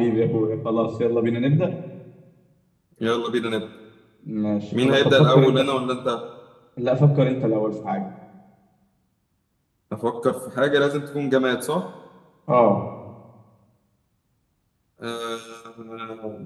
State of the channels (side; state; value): both; identical; correlation 1.00